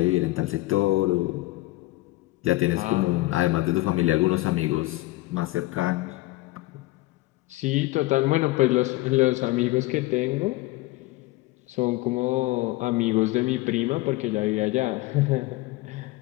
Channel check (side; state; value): right; quieter; 19.4 dB